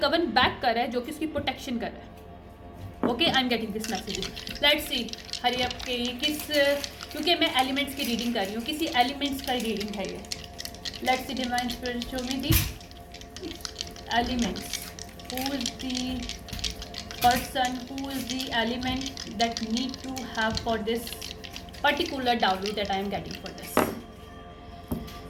कवन बैक कर रहा है जो कि उसकी प्रोटेक्शन कर रहा है। Okay, I am getting this message, let's see hurry up के किस, क्योंकि मैं एलिमेंट्स की रीडिंग कर रही हूँ, किसी एलिमेंट्स का रीडिंग है ये। Let's see divine spirit, show me the elements. Who is the person, who is the element that need to have for this particular dowry that I am getting for this.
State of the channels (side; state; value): both; identical; correlation 1.00